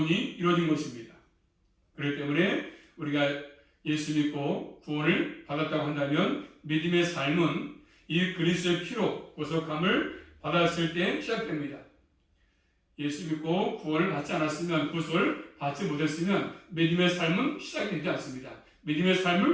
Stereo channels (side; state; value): both; identical; correlation 1.00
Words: 이루어진 것입니다. 그렇기 때문에 우리가 예수 믿고 구원을 받았다고 한다면 믿음의 삶은 이 그리스도의 피로 구속함을 받았을 때 시작됩니다. 예수 믿고 구원을 받지 않았으면, 구속을 받지 못했으면 믿음의 삶은 시작되지 않습니다. 믿음의